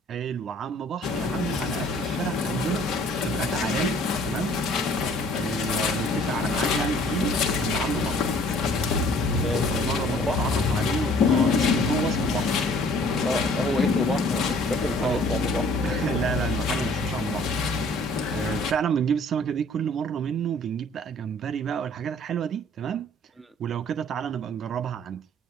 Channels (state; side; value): normal; both; correlation 0.55